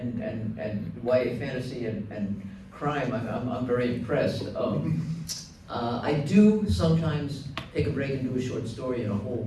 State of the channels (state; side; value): identical; both; correlation 1.00